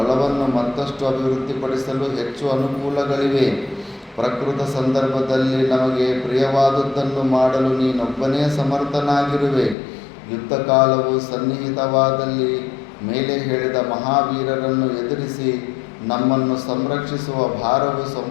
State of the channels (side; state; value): right; drops out; at 9.8 s